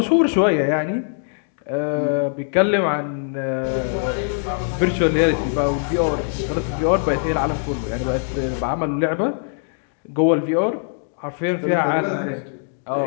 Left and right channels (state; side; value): silent; right; 64 dB below the other